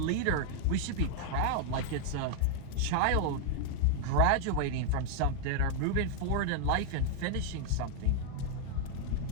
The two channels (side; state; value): both; different; correlation 0.00